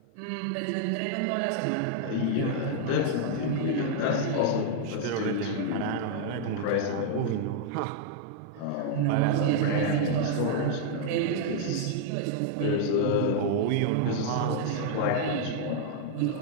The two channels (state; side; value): different; both; correlation -0.01